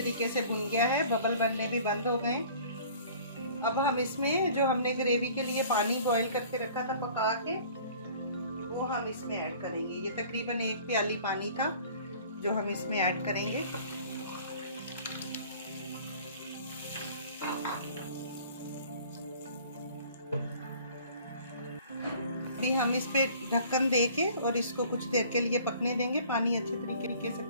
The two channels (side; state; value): both; inverted; correlation -0.49